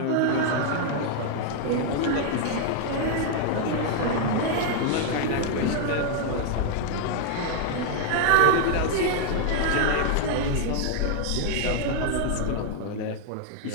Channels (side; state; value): both; different; correlation 0.00